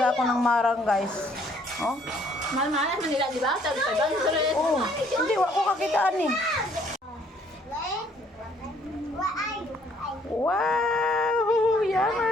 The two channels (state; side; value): normal; both; correlation 0.63